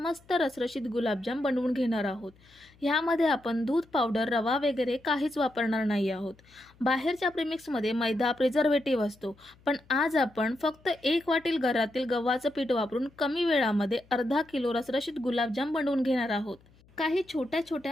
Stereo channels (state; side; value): noise; left; hum, 29 dB below the sound